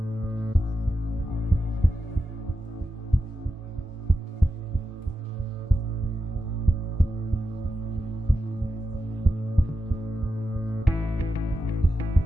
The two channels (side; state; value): both; normal; correlation 0.89